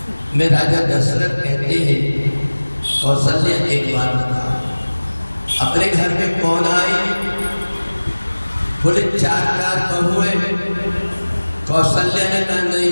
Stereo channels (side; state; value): both; inverted; correlation -1.00